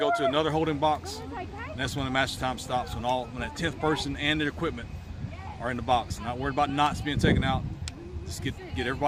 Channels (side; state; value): both; identical; correlation 1.00